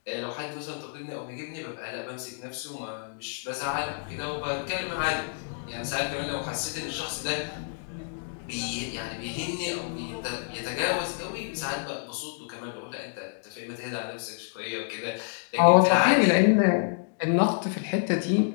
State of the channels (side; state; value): right; silent; digital silence